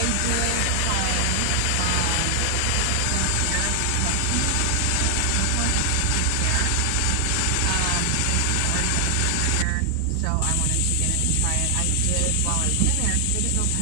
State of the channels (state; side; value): different; both; correlation 0.00